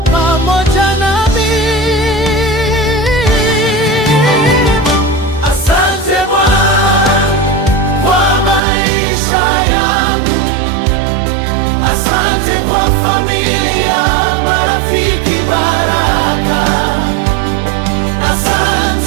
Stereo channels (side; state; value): left; drops out; at 8.6 s